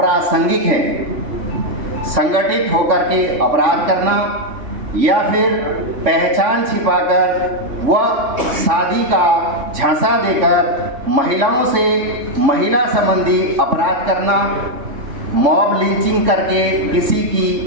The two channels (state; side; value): late; left; 3.5 ms